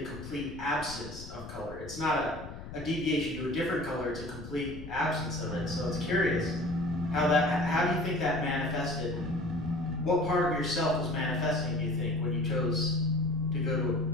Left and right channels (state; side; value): noise; left; rumble, 12 dB below the sound